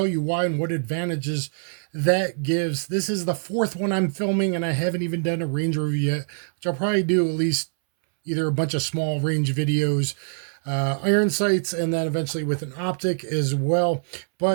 you why and what advantages that gives. This is the fourth one I'm filming, and I haven't even done a range review yet, which I'll probably do at least either a bunch of small range videos, iron sights, and then eventually with an optic as well.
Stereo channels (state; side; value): silent; left; 63 dB below the other